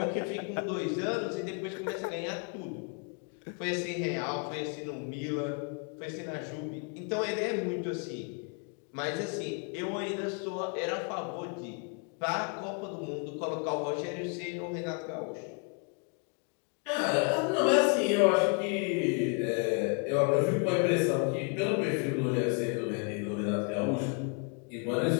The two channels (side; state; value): right; quieter; 36.7 dB